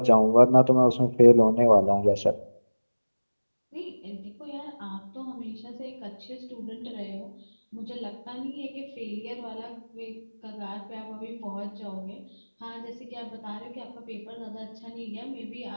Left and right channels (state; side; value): inverted; both; correlation -1.00